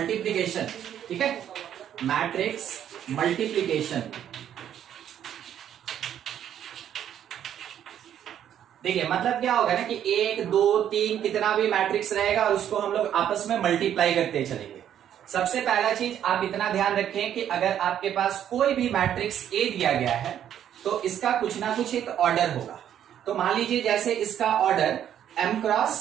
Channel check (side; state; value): left; quieter; 10.1 dB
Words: ठीक है, मैट्रिक्स मल्टीप्लिकेशन। देखिए मतलब क्या होगा ना कि 1 2 3 कितना भी मैट्रिक्स रहेगा और उसको हम लोग आपस में मल्टीप्लाई करते चलेंगे। सबसे पहला चीज आप इतना ध्यान रखें कि अगर आपके पास कोई भी मैट्रिक्स ए दिया गया है तो इसका कुछ ना कुछ एक ऑर्डर होगा। तो मान लीजिए जैसे इसका ऑर्डर m